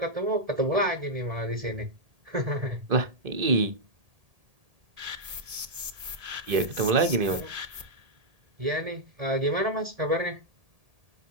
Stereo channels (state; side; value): late; left; 1.8 ms